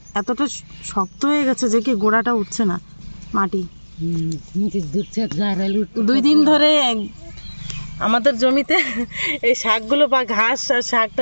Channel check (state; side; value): inverted; both; correlation -1.00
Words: এতটা শক্ত হয়ে গেছে যে কি গোড়াটা উঠছে না মাটি। 2 দিন ধরে আমাদের জমিতে এই শাকগুলো বা ঘাস আর